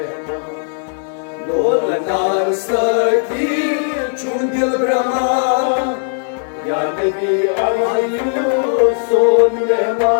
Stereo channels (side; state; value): right; silent; digital silence